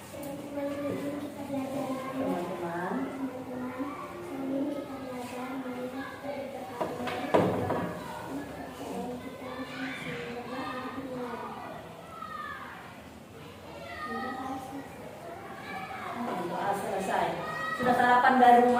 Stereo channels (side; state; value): both; identical; correlation 1.00